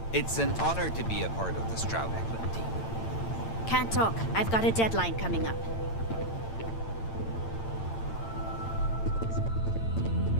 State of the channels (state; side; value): late; right; 8.9 ms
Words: It's an honor to be a part of the Stroud-Eklund team. Can't talk. I've got a deadline coming up.